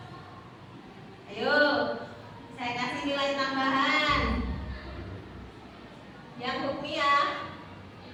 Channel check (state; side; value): identical; both; correlation 1.00